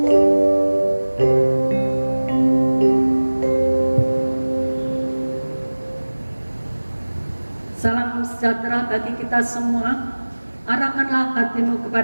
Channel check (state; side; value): inverted; both; correlation -1.00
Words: Salam sejahtera bagi kita semua. Arahkanlah hatimu